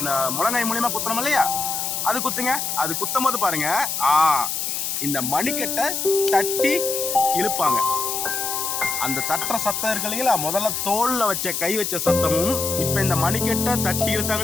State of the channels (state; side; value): noise; left; hiss, 2 dB below the sound